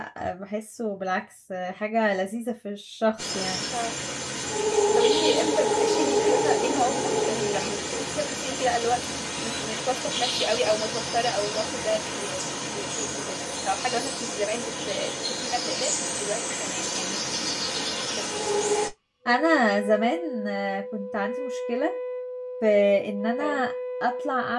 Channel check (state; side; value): identical; both; correlation 1.00